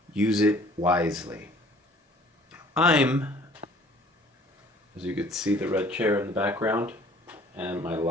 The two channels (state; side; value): normal; both; correlation 0.54